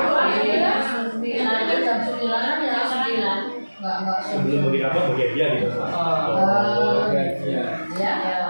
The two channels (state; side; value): inverted; both; correlation -1.00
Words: Sebelum bagi apa bagi dia gitu. Bagian. Ya.